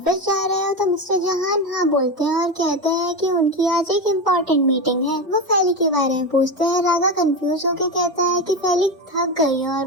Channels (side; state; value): both; normal; correlation 0.17